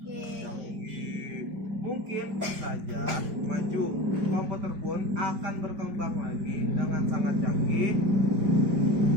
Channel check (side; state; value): left; late; 5.1 ms